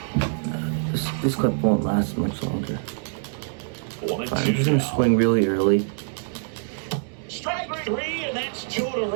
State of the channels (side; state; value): left; silent; digital silence